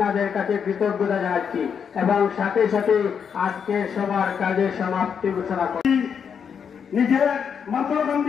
কাছে কৃতজ্ঞতা জানাচ্ছি এবং সাথে সাথে আজকে সবার কাজের সমাপ্তি ঘোষণা করি। নিজের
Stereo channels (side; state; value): right; quieter; 7.1 dB